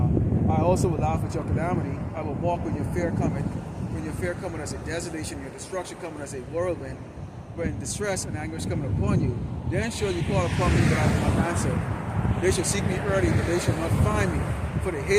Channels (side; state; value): both; identical; correlation 1.00